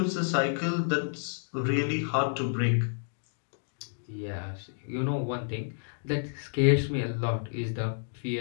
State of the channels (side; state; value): right; silent; digital silence